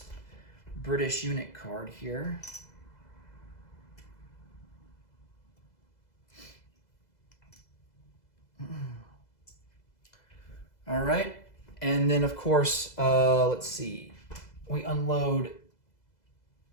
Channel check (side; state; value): right; late; 2.0 ms